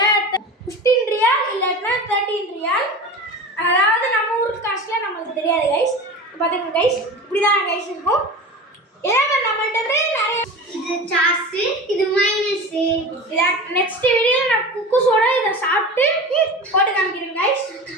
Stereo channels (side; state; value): both; normal; correlation 0.32